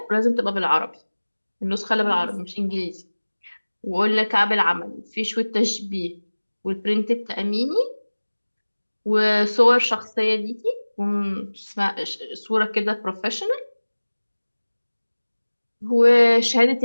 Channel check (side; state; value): both; inverted; correlation -1.00